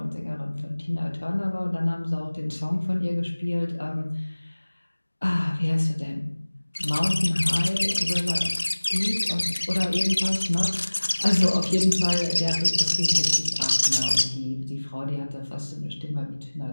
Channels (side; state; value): both; inverted; correlation -1.00